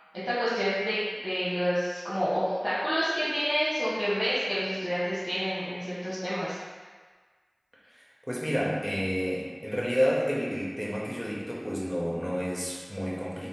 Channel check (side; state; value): both; identical; correlation 1.00